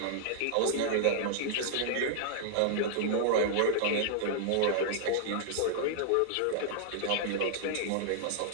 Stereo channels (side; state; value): both; different; correlation -0.01